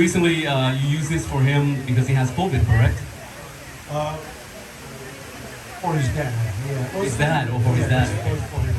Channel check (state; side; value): identical; both; correlation 1.00